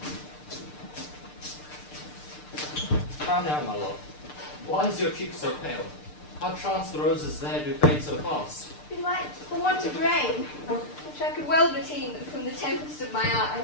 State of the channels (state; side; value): late; right; 6.7 ms